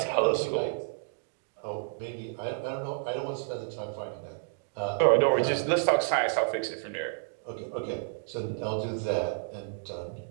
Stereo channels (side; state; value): left; silent; digital silence